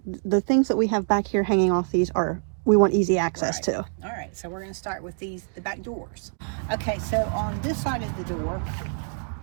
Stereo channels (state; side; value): silent; left; 61 dB below the other